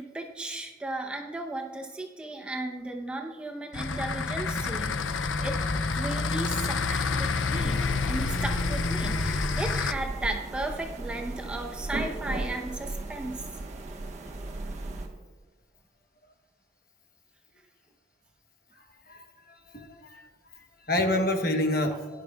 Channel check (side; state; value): both; normal; correlation 0.59